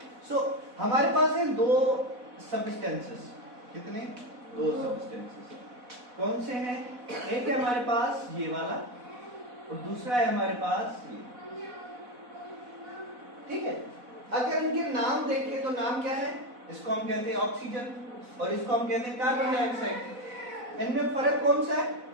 सो हमारे पास है दो सब्सटेंसेस। कितने? दो सब्सटेंसेस। कौन से हैं? एक है हमारे पास ये वाला और दूसरा है हमारे पास ये। ठीक है, अगर इनके नाम देखें तो नाम क्या है? इसको हम कहते हैं ऑक्सीजन और इसको हम कहते हैं कार्बन डाइऑक्साइड। इनमें फर्क कौन सा है?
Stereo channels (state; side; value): late; left; 4.1 ms